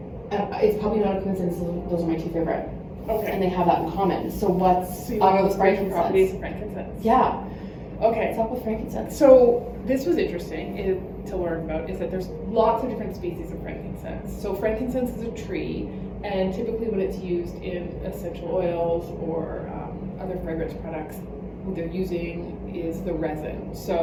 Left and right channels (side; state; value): both; identical; correlation 1.00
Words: probably not a coincidence that those are my two favorite. Okay. And they have that in common. So what's So you up know the with spiritual frankincense? properties of frankincense. Yeah. Okay. What's up with frankincense? So this was interesting to learn about, is that there's lots of different species of frankincense. So frankincense is a tree, and typically when it's used in essential oils or other fragrance products, what they're using is the resin.